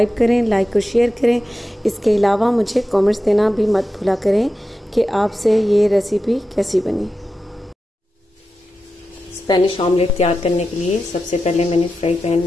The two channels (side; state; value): both; normal; correlation 0.91